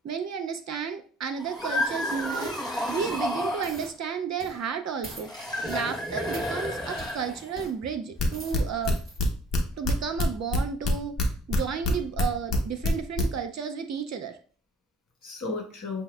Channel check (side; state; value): both; normal; correlation 0.53